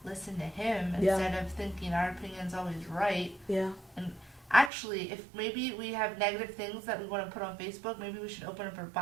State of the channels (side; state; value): left; drops out; at 4.7 s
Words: listen to him Yeah. instead of thinking our opinion's always right. Yeah. Actually, if maybe we have negative things that we want to put on Facebook, maybe we should open up our